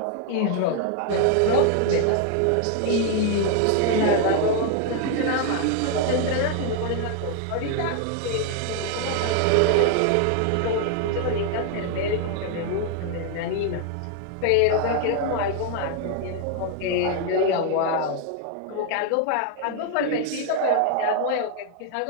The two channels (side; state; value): both; different; correlation 0.00